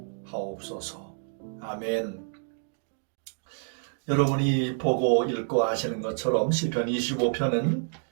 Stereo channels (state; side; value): silent; left; digital silence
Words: 하옵소서. 아멘. 여러분이 보고 읽고 아시는 것처럼 시편 25편은